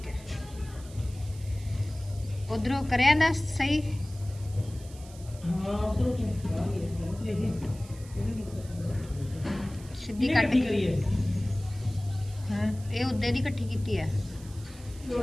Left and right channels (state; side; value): noise; right; hiss, 21 dB below the sound